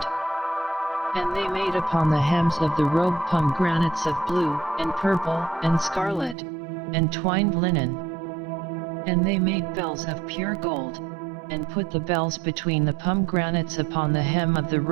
And they made upon the hems of the robe pomegranates of blue, and purple, and scarlet, and twined linen. And they made bells of pure gold, and put the bells between the pomegranates upon the hem of the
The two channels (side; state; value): left; drops out; at 6.4 s